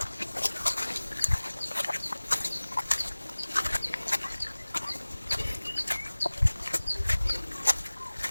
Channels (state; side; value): inverted; both; correlation -1.00